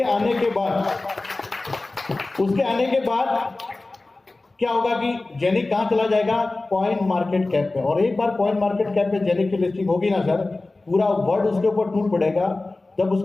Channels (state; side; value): quieter; right; 3.2 dB